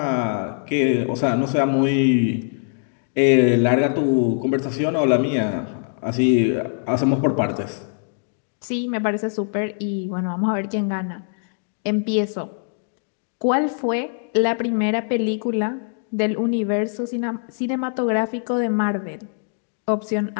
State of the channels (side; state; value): right; silent; digital silence